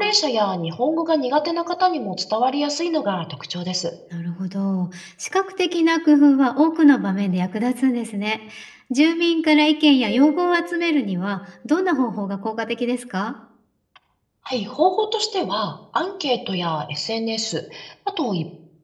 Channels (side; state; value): both; identical; correlation 1.00